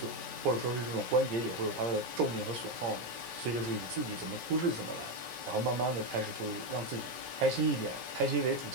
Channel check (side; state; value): left; late; 17 ms